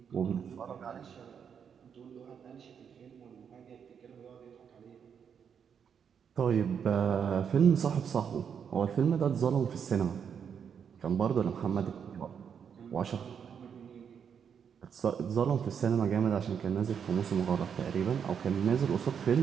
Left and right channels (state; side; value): quieter; left; 7.4 dB